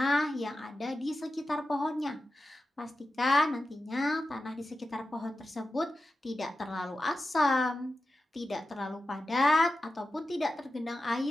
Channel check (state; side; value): normal; both; correlation 0.93